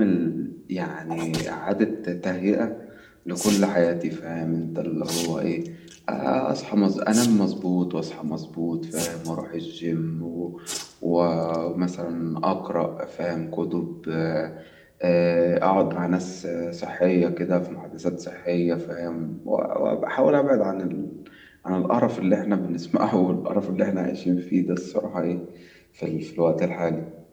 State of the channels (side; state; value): both; identical; correlation 1.00